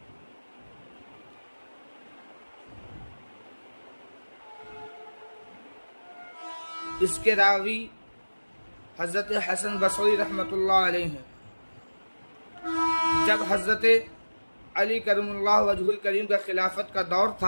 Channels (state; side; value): inverted; both; correlation -1.00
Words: اس کے راوی حضرت حسن بصری رحمۃ اللہ علیہ ہیں۔ جب حضرت علی کرم اللہ وجہ الکریم کا خلافت کا دور